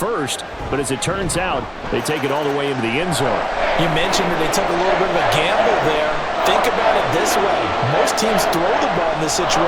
But as it turns out, they take it all the way into the end zone. You mentioned that they took a little bit of a gamble there. Think about it this way. Most teams throw the ball in this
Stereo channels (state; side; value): identical; both; correlation 1.00